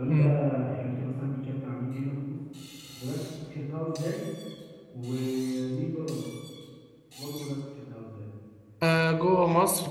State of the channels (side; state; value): both; identical; correlation 1.00